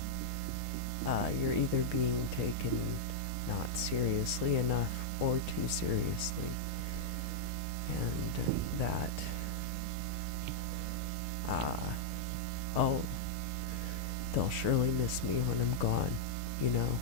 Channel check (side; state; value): both; normal; correlation -0.04